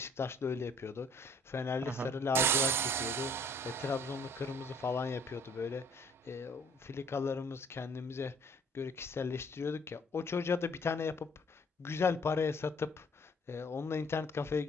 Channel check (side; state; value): both; normal; correlation 0.59